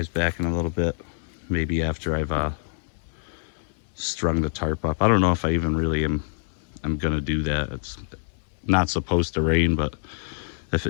back in a little bit, maybe after I've strung the tarp up. I don't know if I even really am gonna do that. It's not supposed to rain, but if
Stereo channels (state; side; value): silent; right; digital silence